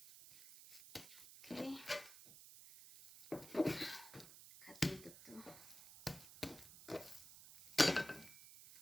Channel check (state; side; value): noise; right; hiss, 16 dB below the sound